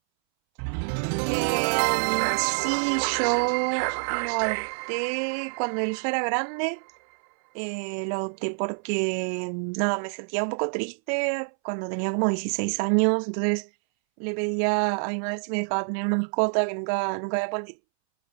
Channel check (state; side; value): silent; left; 61 dB below the other